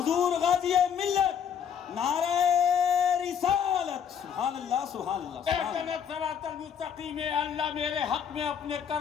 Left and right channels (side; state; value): right; quieter; 8.0 dB